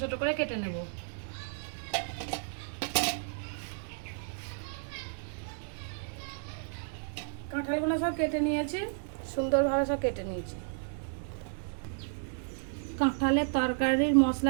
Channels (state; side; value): silent; left; digital silence